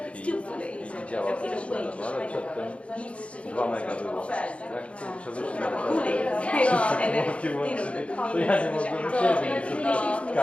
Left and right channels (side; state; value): right; late; 0.061 ms